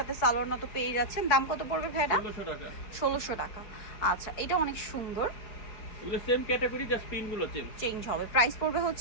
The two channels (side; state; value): right; late; 4.6 ms